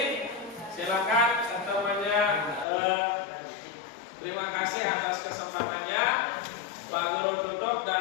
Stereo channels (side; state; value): right; drops out; at 2.7 s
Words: Silakan semuanya. Terima kasih atas kesempatannya. Pak Guru tutup